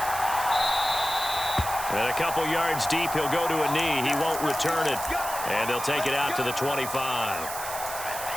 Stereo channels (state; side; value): noise; right; hiss, 8 dB below the sound